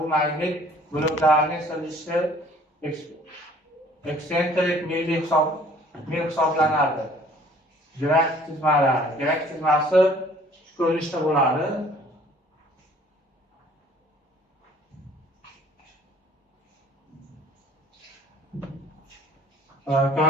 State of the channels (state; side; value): normal; both; correlation 0.55